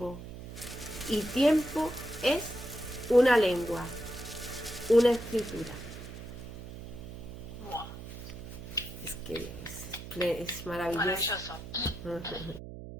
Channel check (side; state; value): right; noise; hum, 11 dB below the sound